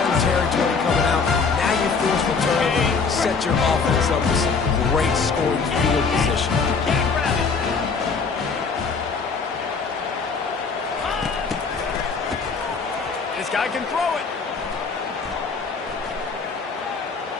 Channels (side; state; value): right; quieter; 5.0 dB